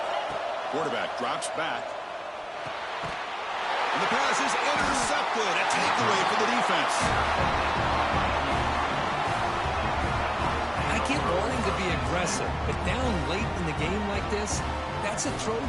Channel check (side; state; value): both; identical; correlation 1.00